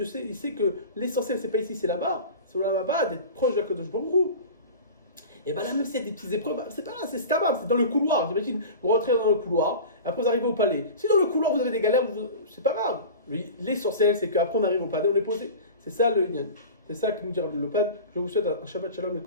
il sait que l'essentiel, c'est pas ici, c'est là-bas, c'est là-bas, d'être proche de la Kadosh Baruch Hu. Et bien là, même s'il y a des petites épreuves, c'est pas là, c'est stable, c'est dans le couloir. J'imagine, vous rentrez dans le couloir, après vous arrivez au palais. Si dans le couloir vous avez des galères, c'est pas grave. L'essentiel, c'est qu'après on arrive au palais, on est posé. C'est ça le Inyan. C'est ça que nous dit le Pad. Je vous souhaite un Shabbat Shalom et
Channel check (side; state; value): both; inverted; correlation -0.34